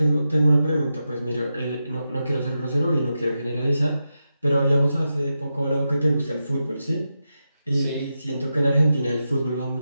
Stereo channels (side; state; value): both; inverted; correlation -0.89